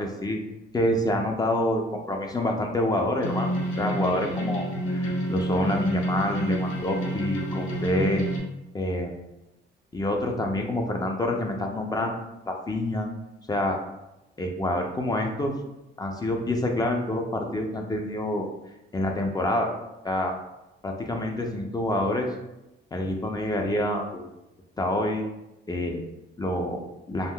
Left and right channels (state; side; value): normal; both; correlation 0.57